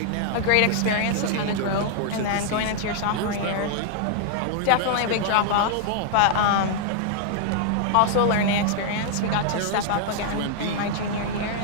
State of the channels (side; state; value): both; different; correlation -0.01